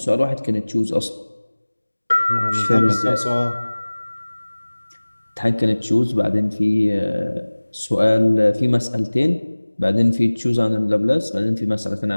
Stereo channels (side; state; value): both; inverted; correlation -1.00